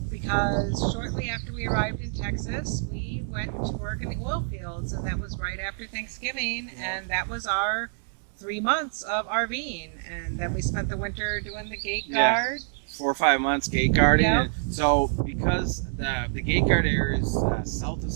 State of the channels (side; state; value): left; silent; digital silence